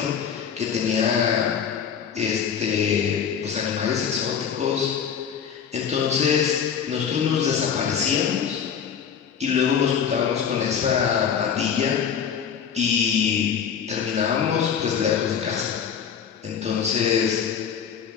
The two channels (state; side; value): quieter; right; 7.5 dB